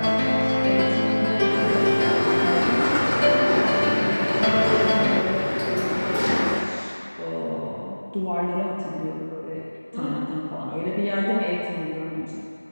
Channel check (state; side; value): inverted; both; correlation -1.00